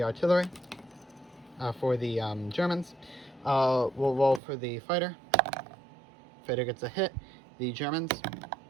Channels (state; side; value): drops out; left; at 4.4 s